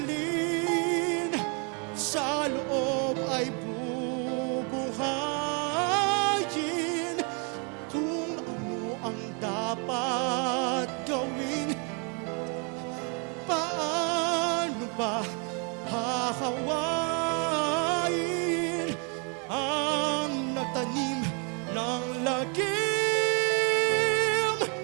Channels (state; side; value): quieter; left; 36.5 dB